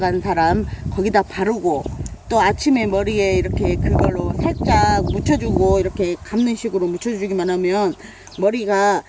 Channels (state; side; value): identical; both; correlation 1.00